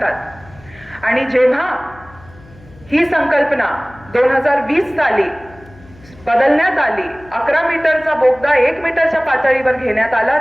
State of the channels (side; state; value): left; noise; hum, 24 dB below the sound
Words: आणि जेव्हा ही संकल्पना 2020 साली बदलण्यात आली, 11 मीटरचा बोगदा 1 मीटरच्या पातळीवर घेण्यात आला,